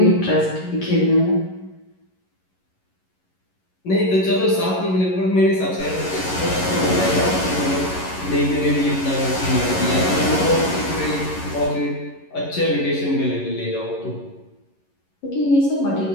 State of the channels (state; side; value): late; right; 11 ms